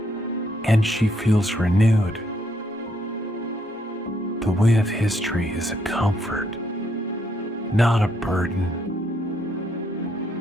and she feels renewed. The weight of history is a comfort, not a burden.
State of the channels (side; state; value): both; normal; correlation 0.73